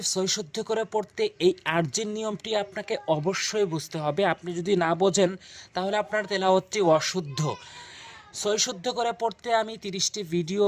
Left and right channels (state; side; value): identical; both; correlation 1.00